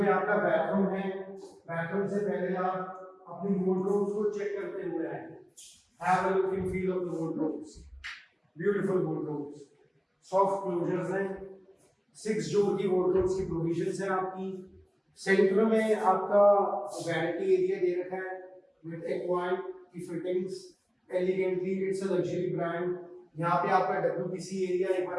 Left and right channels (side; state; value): both; identical; correlation 1.00